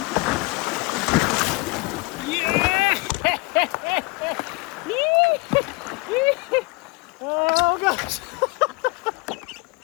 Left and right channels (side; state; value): right; quieter; 25.7 dB